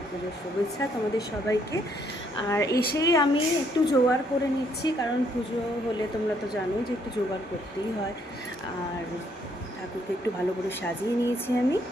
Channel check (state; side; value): normal; both; correlation 0.69